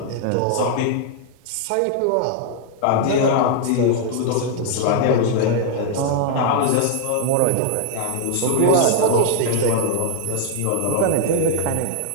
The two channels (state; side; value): different; both; correlation 0.00